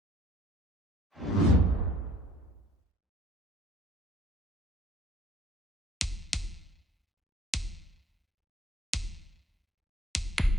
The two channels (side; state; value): both; normal; correlation 0.56